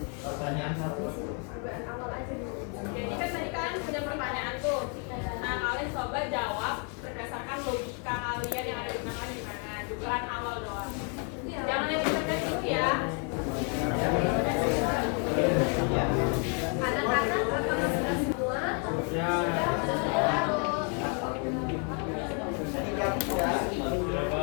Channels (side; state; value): right; quieter; 38.7 dB